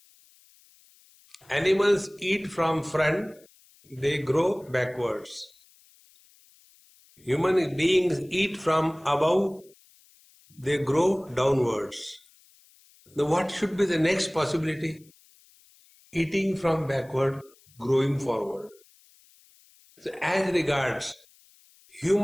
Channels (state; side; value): noise; left; hiss, 29 dB below the sound